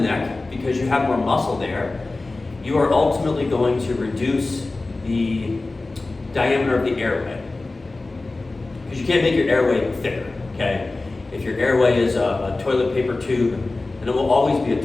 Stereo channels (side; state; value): right; quieter; 3.3 dB